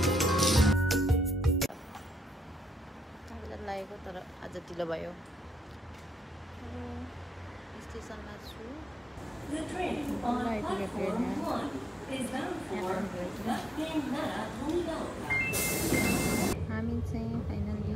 लागेको तर आज ढिलो भयो स्टेसनमा छु हामी चाहिँ फाइनली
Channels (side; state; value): both; normal; correlation 0.81